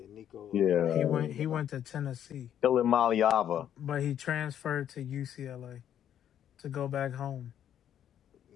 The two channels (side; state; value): right; quieter; 10.1 dB